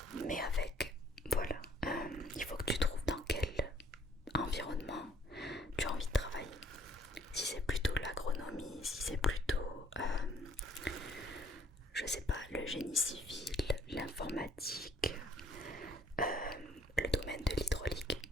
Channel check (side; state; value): both; normal; correlation 0.60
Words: Mais avec, voilà, il faut que tu trouves dans quel environnement tu as envie de travailler. Si c'est plutôt l'agronomie, si c'est plutôt, je sais pas, le génie civil, l'informatique, le domaine de l'hydraulique,